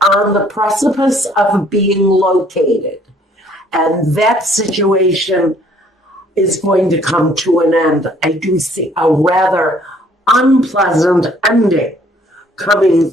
the precipice of being located. And that situation is going to come to an end. I do see a rather unpleasant ending coming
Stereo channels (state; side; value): normal; both; correlation 0.61